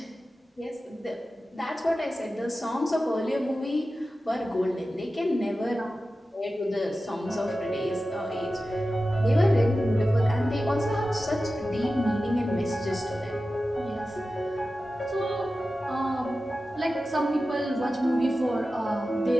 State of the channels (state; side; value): normal; both; correlation 0.94